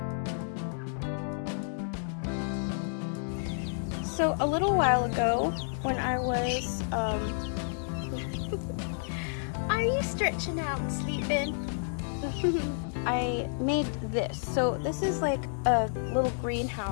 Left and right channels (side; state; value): right; silent; digital silence